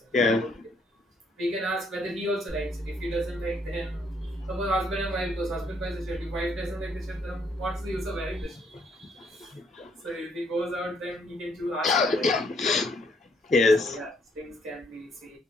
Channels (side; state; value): both; normal; correlation 0.70